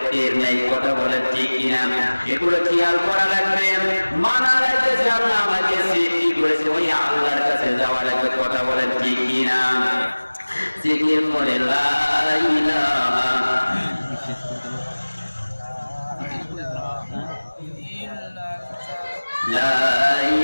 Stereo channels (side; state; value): both; inverted; correlation -1.00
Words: টের নেই, কথা বলেন ঠিক কিনা? এগুলো খেয়াল করা লাগবে, মানা লাগবে যে আল্লাহ আমাকে সৃষ্টি করেছে, ওই আল্লাহর কাছে যাওয়া লাগবে, কথা বলেন ঠিক কিনা? জিকির করে লা ইলাহা লা